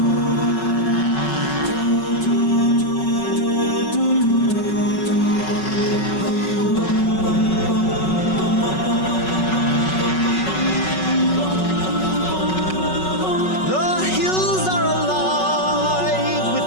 hills are alive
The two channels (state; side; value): late; right; 5.3 ms